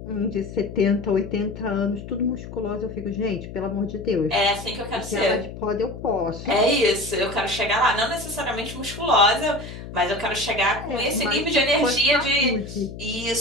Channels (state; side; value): noise; left; hum, 11 dB below the sound